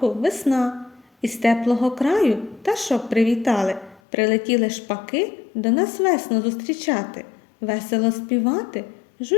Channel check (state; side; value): drops out; right; at 4.0 s